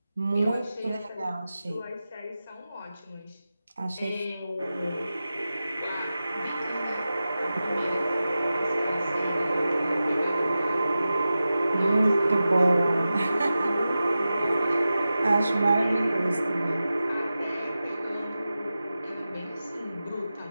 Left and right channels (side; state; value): both; inverted; correlation -0.94